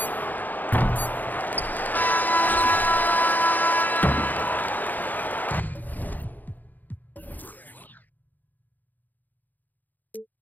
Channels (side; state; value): right; late; 0.084 ms